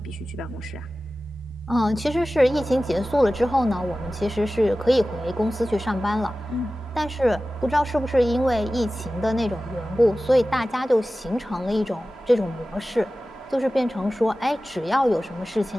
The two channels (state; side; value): normal; both; correlation 0.96